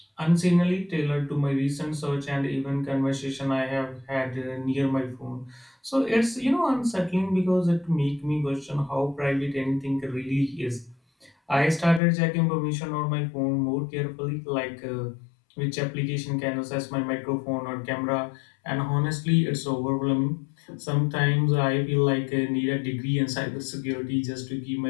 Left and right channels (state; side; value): drops out; right; at 12.0 s